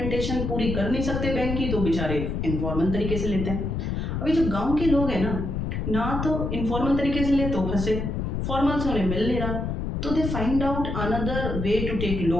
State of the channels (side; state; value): left; noise; rumble, 2 dB below the sound